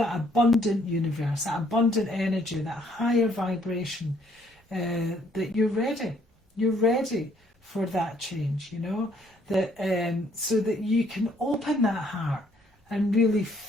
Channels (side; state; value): both; normal; correlation 0.66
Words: abundant universe, that abundant energy, that higher vibration, that you're ready. You're ready for that change, you know, that so that you can open that heart and really